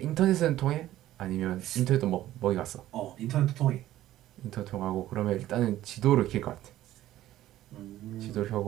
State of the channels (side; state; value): left; quieter; 14.1 dB